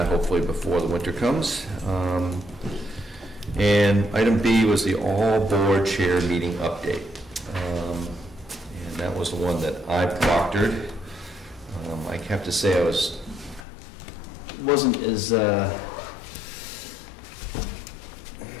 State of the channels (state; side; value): drops out; right; at 13.7 s